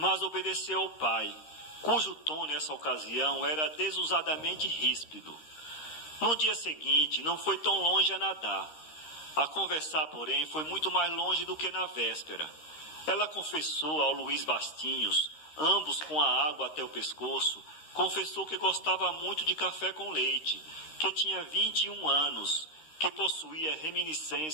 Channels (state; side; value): late; right; 13 ms